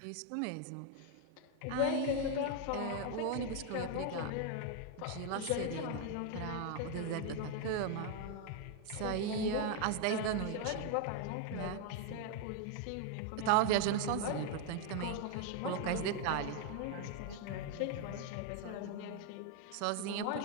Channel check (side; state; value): both; different; correlation 0.01